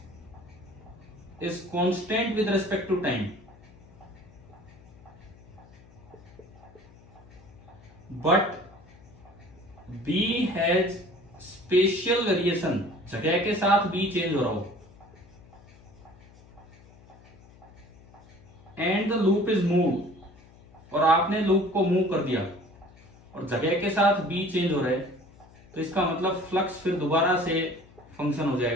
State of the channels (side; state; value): left; noise; hum, 24 dB below the sound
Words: is constant with respect to time, but B has spatial variation, जगह के साथ B change हो रहा हो, and the loop is moved, और आपने loop को move कर दिया और जगह के साथ B चेंज हो रहा है, तो इसका मतलब फ्लक्स फिर दोबारा से फंक्शन हो